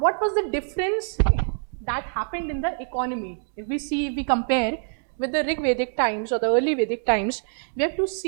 was the difference that happened in the economy? If we compare with the Rig Vedic times or the early Vedic times, we have to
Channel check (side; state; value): left; silent; digital silence